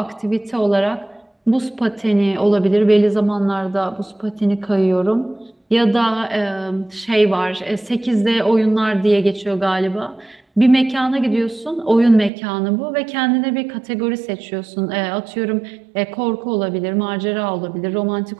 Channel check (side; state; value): left; drops out; at 12.3 s